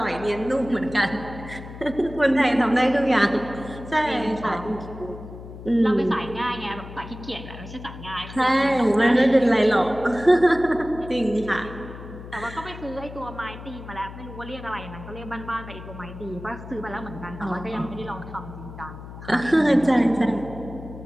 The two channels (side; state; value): left; noise; hum, 13 dB below the sound